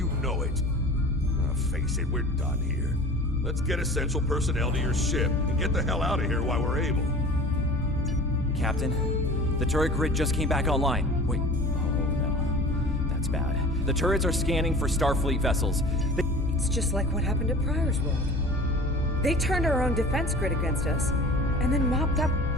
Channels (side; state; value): both; normal; correlation 0.40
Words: know it. Face it, we're done here. Let's get essential personnel to your ship and get the hell out of here while we're able. Captain, the turret grid just came back online. Wait, oh no. That's bad. The turrets are scanning for Starfleet vessels. It's just like what happened at Pryor's World. They turned our own defense grid against us, and then mopped up...